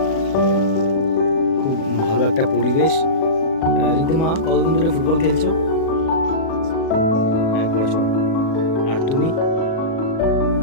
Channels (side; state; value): right; late; 37 ms